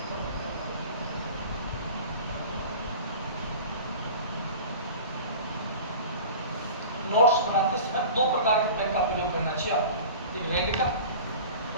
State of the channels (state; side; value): inverted; both; correlation -0.38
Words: नोट्स बनाते समय दो प्रकार के पेन का प्रयोग करना चाहिए आपको, एक रेड का